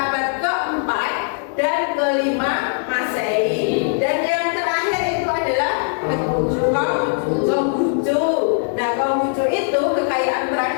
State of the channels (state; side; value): silent; right; digital silence